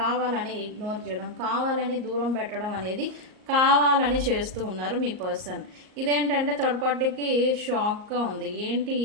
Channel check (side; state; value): left; late; 38 ms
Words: ఇగ్నోర్ చేయడం, కావాలని దూరం పెట్టడం అనేది కావాలని చేస్తూ ఉన్నారు మీ పర్సన్. ఇదేంటంటే థర్డ్ పార్టీకి షాక్గా ఉంది. ఏంటి